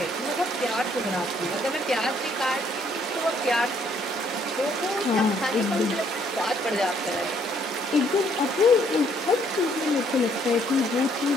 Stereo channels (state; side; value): normal; both; correlation 0.67